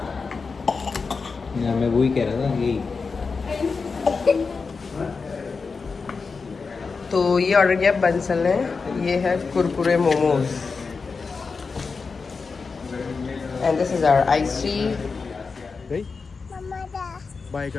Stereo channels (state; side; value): quieter; right; 4.7 dB